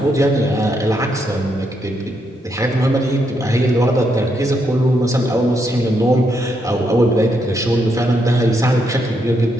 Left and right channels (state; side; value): normal; both; correlation 0.78